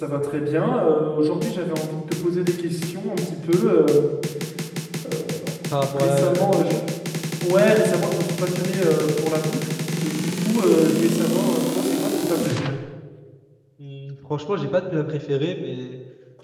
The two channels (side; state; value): both; identical; correlation 1.00